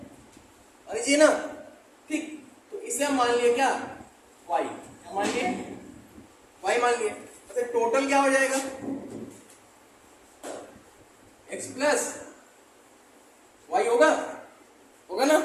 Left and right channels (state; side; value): identical; both; correlation 1.00